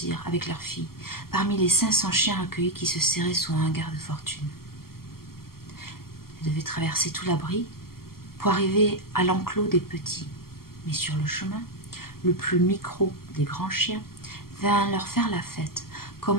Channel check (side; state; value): right; late; 0.93 ms